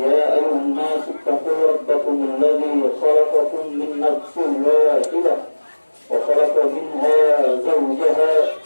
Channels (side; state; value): both; inverted; correlation -1.00